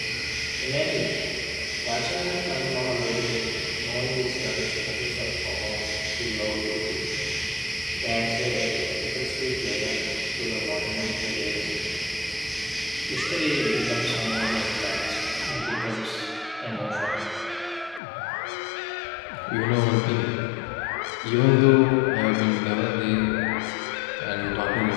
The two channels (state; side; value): drops out; right; at 18.0 s